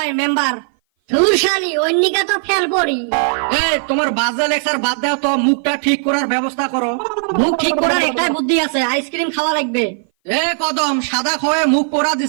মেম্বার। ধুরশালি অন্যিকা তো ফেল পড়ি। তোমার বাজে লেকচার বাদ দাও তো, মুখটা ঠিক করার ব্যবস্থা করো। মুখ ঠিক করার একটাই বুদ্ধি আছে, আইসক্রিম খাওয়া লাগবে। কদম সাদা খোয়ে মুখ পোড়া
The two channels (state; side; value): silent; left; 58 dB below the other